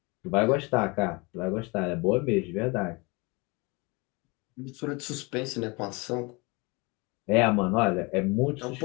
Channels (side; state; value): right; quieter; 27.2 dB